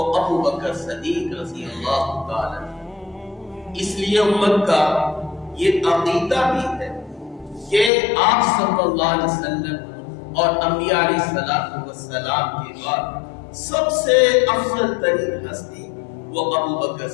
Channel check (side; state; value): right; drops out; at 7.9 s